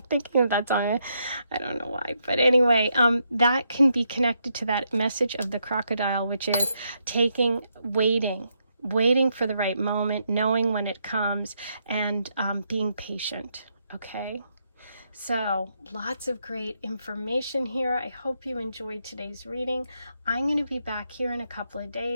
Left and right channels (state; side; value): inverted; both; correlation -0.78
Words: thinking of that song. I don't know why, but anyway, that can be connected to that message of the crocodile, which is waiting for the right moment, knowing when it comes, and being patient. Okay. So lots of great information here. I hope you enjoyed today's reading. I'm going to be back here in a couple of